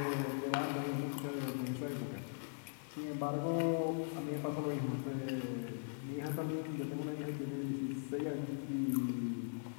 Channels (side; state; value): right; silent; 51 dB below the other